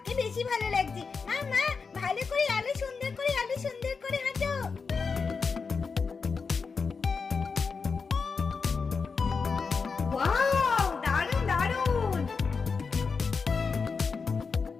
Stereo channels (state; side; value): quieter; right; 5.1 dB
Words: বেশি ভালো লাগছে। মা মা, ভালো করে আলো সুন্দর করে, আলো সুন্দর করে হাঁটো। ওয়াও, দারুণ দারুণ।